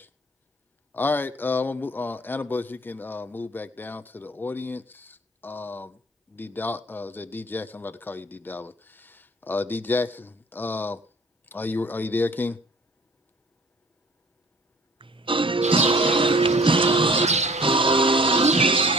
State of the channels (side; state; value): both; normal; correlation 0.51